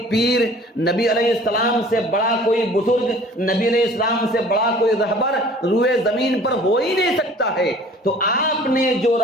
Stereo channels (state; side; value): normal; both; correlation 0.49